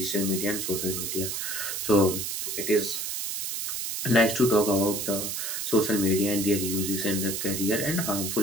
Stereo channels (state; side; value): noise; right; hiss, 3 dB below the sound